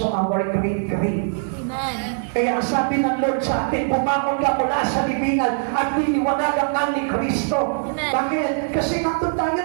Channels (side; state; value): left; silent; digital silence